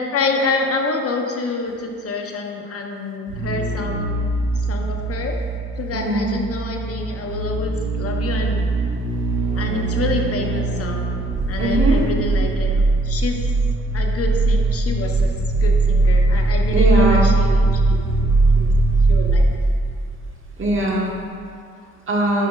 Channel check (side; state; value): both; normal; correlation 0.65